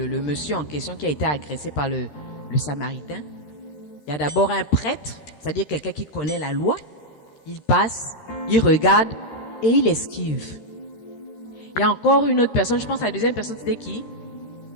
monsieur en question qui a été agressé par le Samaritain. Il y a d'abord un prêtre, c'est-à-dire quelqu'un qui connaît la loi. Il passe, il regarde et il esquive. Il y a encore une autre personne, je pense que la deuxième personne, c'était qui?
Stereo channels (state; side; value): late; right; 13 ms